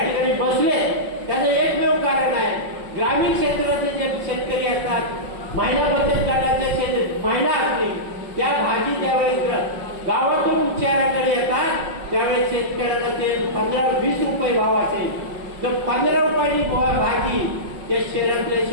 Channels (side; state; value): left; late; 5.4 ms